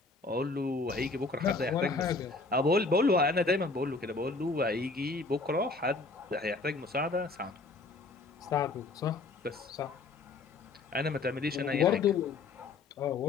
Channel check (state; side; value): quieter; right; 3.8 dB